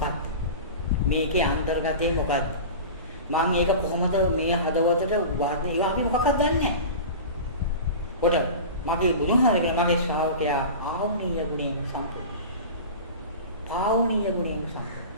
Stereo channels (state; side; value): inverted; both; correlation -0.32